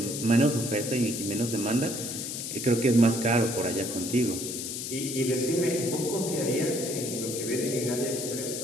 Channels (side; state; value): left; noise; hiss, 5 dB below the sound